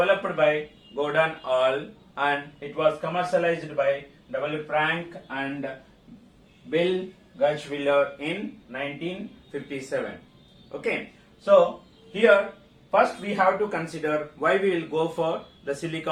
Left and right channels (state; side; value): identical; both; correlation 1.00